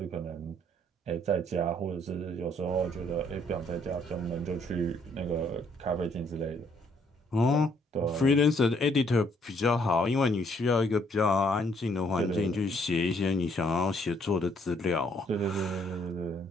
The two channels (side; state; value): both; normal; correlation 0.67